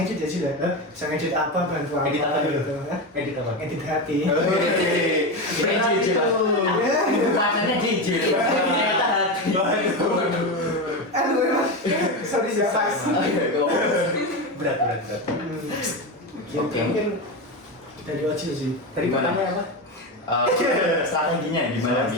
ya sih lah, bisa ngedit apa, bantu apa edit apa gitu. Edit apa? Edit hati. Rasanya jijik. Aduh emang, sorry siapa sih? Berat. Oke. Mungkin dari Ojil sih. Tadi pertanyaan apa? Strateginya gimana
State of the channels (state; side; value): normal; both; correlation 0.17